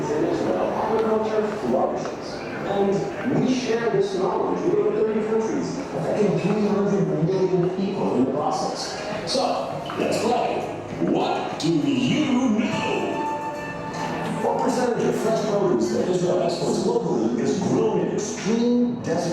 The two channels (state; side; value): identical; both; correlation 1.00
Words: in Israel, agriculture flourishes. And we share this knowledge with over 30 countries, affecting 300 million people in the process. So, let's play. What do you know? What percentage of fresh produce that Israel exports locally is grown in extreme